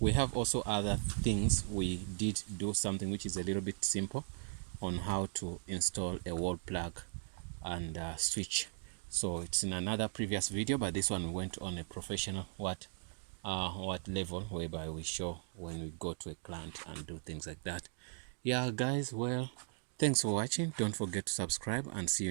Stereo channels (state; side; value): silent; left; digital silence